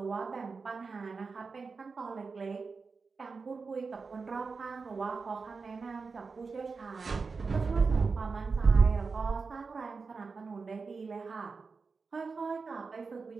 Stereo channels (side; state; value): left; quieter; 4.6 dB